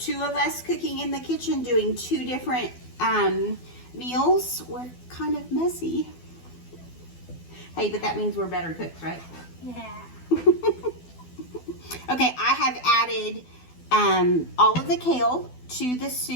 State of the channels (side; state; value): right; late; 12 ms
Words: of us cooking in the kitchen, doing 2 different meals. We're kind of messy. Hey, but that means we're better cooks, right? Yeah. Okay, I have added all of the kale to the